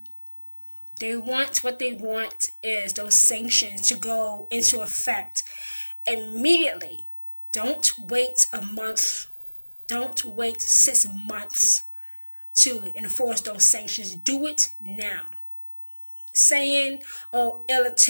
What they want is those sanctions to go into effect immediately. Don't wait a month. Don't wait 6 months to enforce those sanctions. Do it now. Saying, oh, it'll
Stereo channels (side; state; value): both; inverted; correlation -1.00